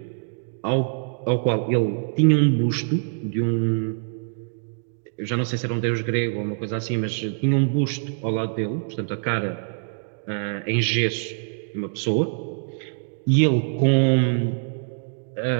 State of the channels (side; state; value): left; silent; digital silence